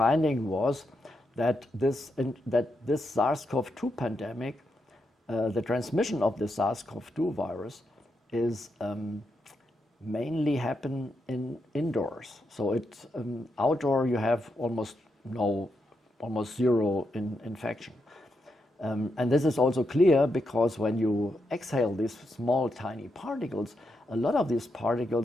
was that this SARS-CoV-2 pandemic, the transmission of the SARS-CoV-2 virus is mainly happen indoors. So it's outdoor you have almost zero infection. And this is also clear because when you exhale these small tiny particles, a lot of these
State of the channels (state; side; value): normal; both; correlation 0.83